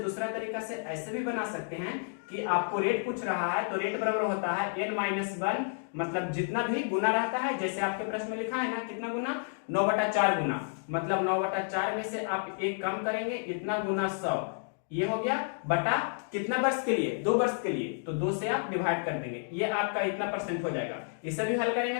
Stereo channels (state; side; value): silent; right; digital silence